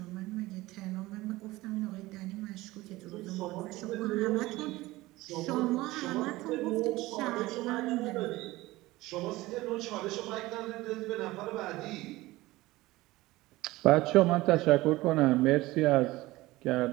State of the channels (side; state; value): left; quieter; 19.0 dB